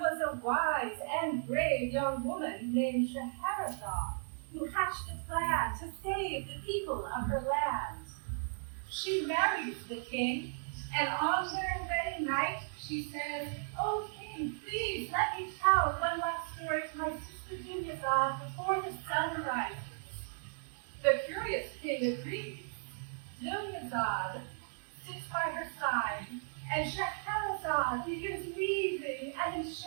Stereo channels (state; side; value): silent; left; digital silence